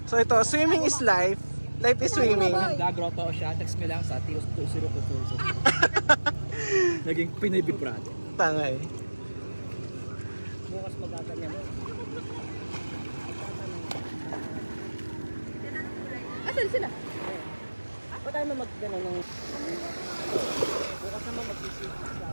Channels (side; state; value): both; inverted; correlation -1.00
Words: So ito, swimming is life. Life is swimming. Gagroto siya. Text me lang sa Tios 2022. Naging Pinoy Big Brother. Tangay. Bukas magaganyan mo. Asan sila? Ba't tayo na mag-ganon ng... Bukas naman mag-isip.